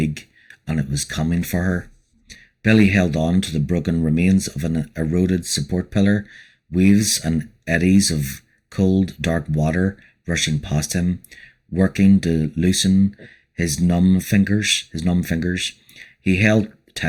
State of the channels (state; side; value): identical; both; correlation 1.00